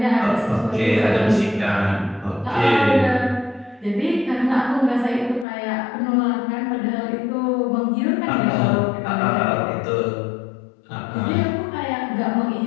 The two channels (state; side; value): drops out; right; at 5.5 s